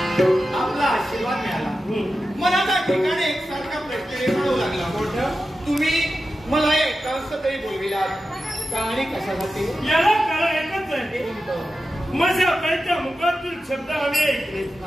आशीर्वाद मिळाला मला त्या ठिकाणी एक सारखा प्रश्न निर्माण लागला तुम्ही मला एक तरी बोलविलात कहाणी कशासाठी याला कारण एकच आहे माझ्या बाईच्या मुखातून शब्द आम्ही ऐकले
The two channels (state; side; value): normal; both; correlation 0.91